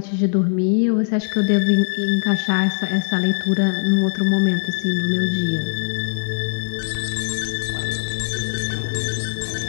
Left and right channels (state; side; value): silent; right; digital silence